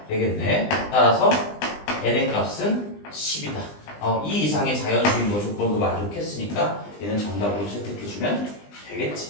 되겠네. 따라서 n의 값은 10이다. 이 이상의 자연수인 거 조건도 만족했으니까 얘는 정답으로 채택해주면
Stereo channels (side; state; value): right; late; 20 ms